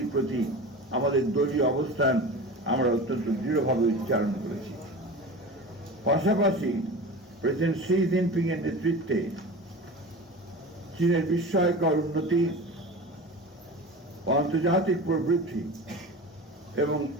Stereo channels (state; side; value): normal; both; correlation 0.32